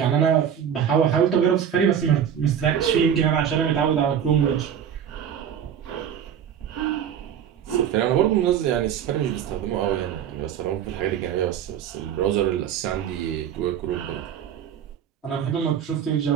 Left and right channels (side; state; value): left; quieter; 8.8 dB